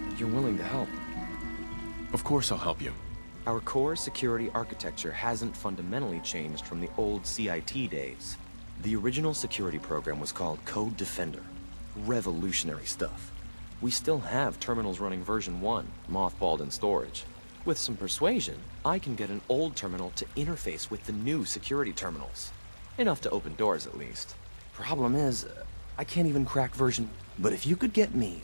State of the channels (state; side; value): inverted; both; correlation -1.00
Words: You're willing to help. Of course I'll help you. Our core security architecture hasn't fundamentally changed from the old CIT days. The original security program was called Code Defender. Revolutionary stuff. We still have terminals running version 1, mothballed in storage. With some persuasion, I can get an old terminal to interface with the new security terminals. Enough to open doors, at least. Problem is, I can't even crack version... But if you could get me...